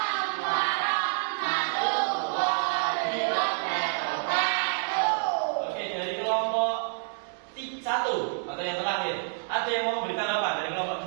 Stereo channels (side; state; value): left; silent; digital silence